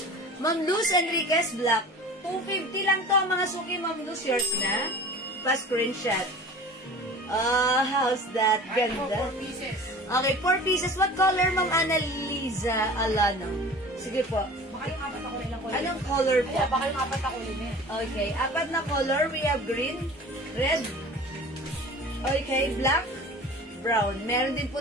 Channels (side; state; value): both; normal; correlation 0.40